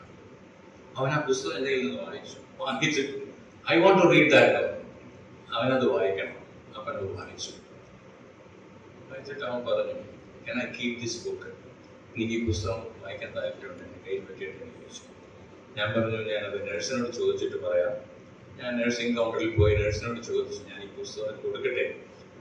അവൻ ആ പുസ്തകം എൻ്റെ കയ്യിൽ നിന്ന് വായിച്ചിട്ട് I want to read that. അവനത് വായിക്കണം. അപ്പം അത് വായിച്ചിട്ട് അവൻ പറഞ്ഞു, can I keep this book? എനിക്ക് ഈ പുസ്തകം വായിക്കാൻ താല്പര്യമുണ്ട്, എൻ്റെ കയ്യിൽ പറ്റിയിട്ട് എന്ന് ചോദിച്ചു. ഞാൻ പറഞ്ഞു, ഞാനത് നഴ്സിനോട് ചോദിച്ചിട്ട് പറയാം. ഞാൻ നഴ്സിംഗ് കൗണ്ടറിൽ പോയി നഴ്സിനോട് ചോദിച്ചു, ഞാൻ ഈ പുസ്തകം കൊടുക്കട്ടെ?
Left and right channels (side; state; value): both; identical; correlation 1.00